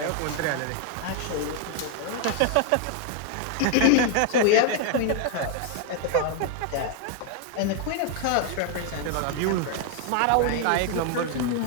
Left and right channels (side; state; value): both; different; correlation 0.00